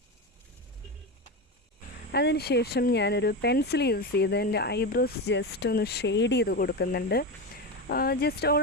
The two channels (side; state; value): both; normal; correlation 0.18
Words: അതിനുശേഷം ഞാനൊരു പെൻസിൽ യൂസ് ചെയ്ത് എൻ്റെ ഐബ്രോസ് ജസ്റ്റ് ഒന്ന് ഷെയ്ഡ് ചെയ്ത് കൊടുക്കുന്നുണ്ട്. ജസ്റ്റ്